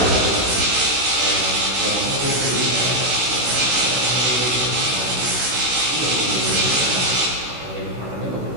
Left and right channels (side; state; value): left; late; 16 ms